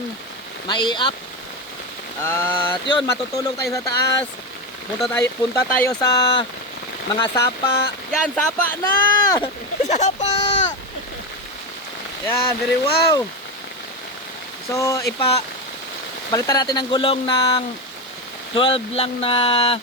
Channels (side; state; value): both; normal; correlation 0.14